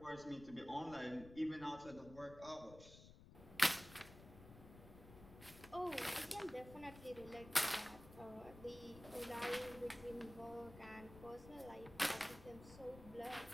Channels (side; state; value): left; noise; rumble, 16 dB below the sound